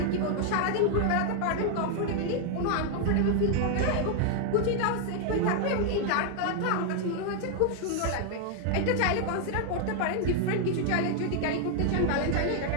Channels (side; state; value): both; different; correlation 0.00